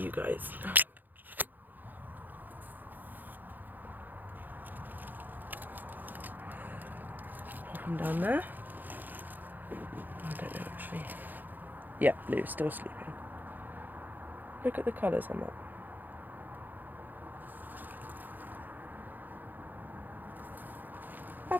guys. Pop them down there. I don't know actually. Yeah, Blue's still sleeping. Look at the colours on that.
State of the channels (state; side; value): late; left; 0.086 ms